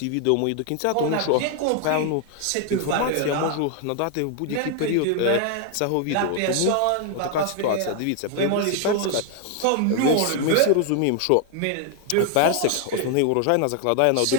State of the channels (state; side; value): different; both; correlation 0.00